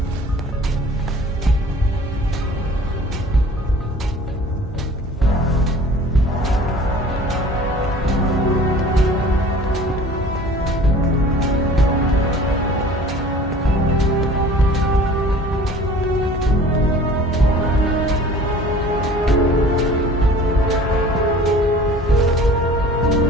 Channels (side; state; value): both; normal; correlation 0.46